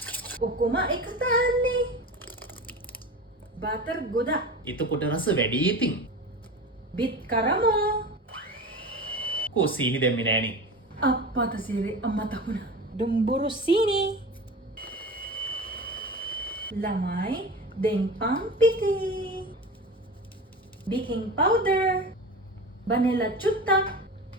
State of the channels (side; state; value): both; normal; correlation 0.31